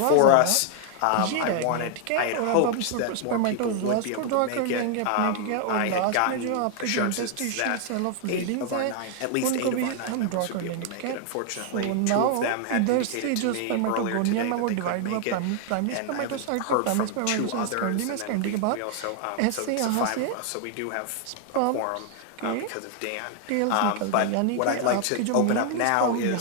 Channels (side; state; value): both; different; correlation 0.00